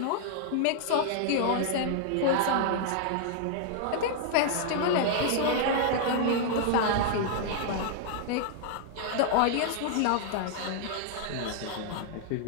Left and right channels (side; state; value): both; different; correlation -0.01